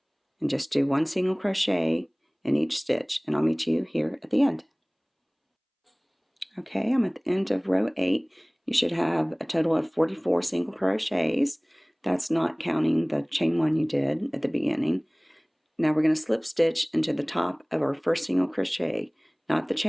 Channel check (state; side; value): identical; both; correlation 1.00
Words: and just do 1 single crochet in each stitch, and I'll meet you here at the end. Okay, I'm at the end of row 8. You should have a total of 44 single crochets. That's not counting the chain 1 you did at the beginning. Now we're going to slip stitch into the top of our first single crochet, not the